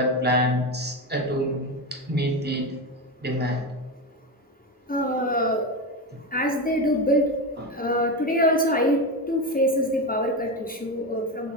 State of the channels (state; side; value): normal; both; correlation 0.16